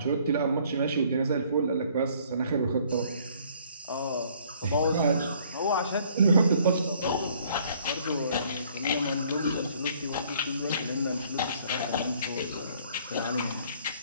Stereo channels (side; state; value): both; inverted; correlation -0.60